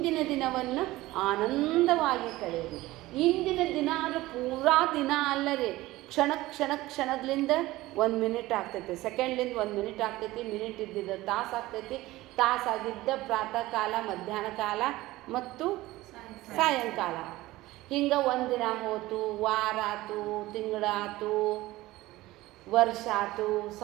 ದಿನವನ್ನು ಆನಂದವಾಗಿ ಕಳೆಯಿರಿ. ಇಂದಿನ ದಿನ ಅಂದರೆ ಪೂರಾ ದಿನ ಅಲ್ಲರಿ, ಕ್ಷಣದಿಂದ 1 ಮಿನಿಟ್ ಆಗ್ತೈತಿ, ಸೆಕೆಂಡ್ಲಿಂದ 1 ಮಿನಿಟ್ ಆಗ್ತೈತಿ, ಮಿನಿಟ್ ಇದ್ದಿದ್ದು ತಾಸು ಆಗ್ತೈತಿ, ತಾಸಾಗಿದ್ದ ಪ್ರಾತಃ ಕಾಲ, ಮಧ್ಯಾಹ್ನ ಕಾಲ ಮತ್ತು ಸಾಯಂಕಾಲ. ಹಿಂಗೆ ಒಂದಿನ ಹೋತು, ವಾರ ಆತು, ತಿಂಗಳಾತು, ವರ್ಷ ಆತು,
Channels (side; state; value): left; quieter; 18.0 dB